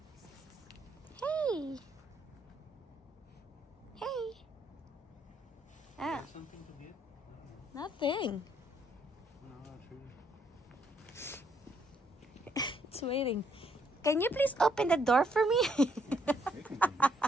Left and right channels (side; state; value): both; normal; correlation 0.71